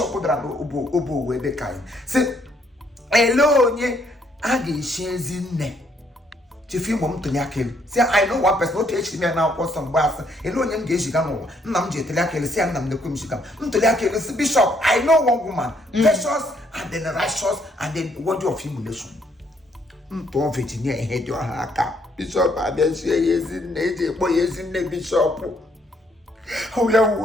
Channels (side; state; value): both; normal; correlation 0.70